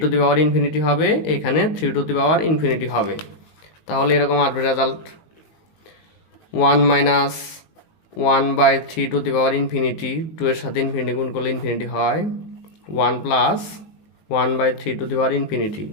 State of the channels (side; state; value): right; late; 19 ms